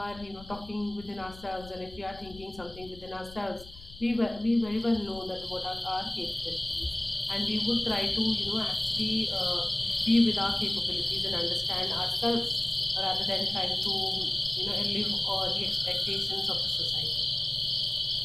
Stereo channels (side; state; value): left; noise; rumble, 17 dB below the sound